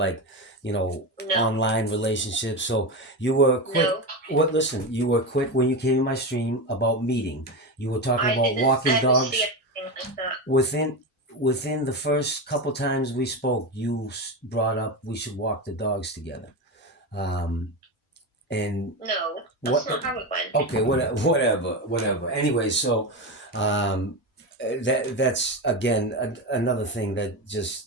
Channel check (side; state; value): both; normal; correlation 0.17